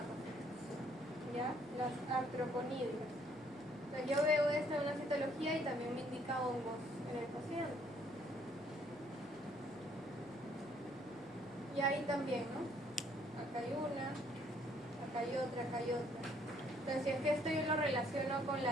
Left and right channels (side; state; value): right; noise; hum, 28 dB below the sound